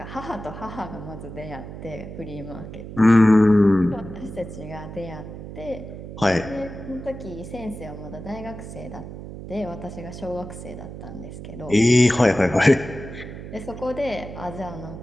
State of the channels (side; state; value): right; noise; hum, 11 dB below the sound